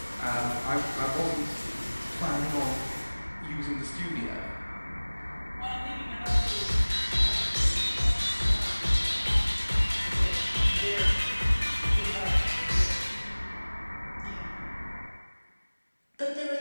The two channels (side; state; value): both; inverted; correlation -1.00